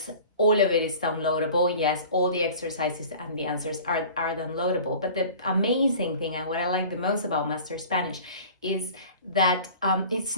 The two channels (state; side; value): inverted; both; correlation -0.43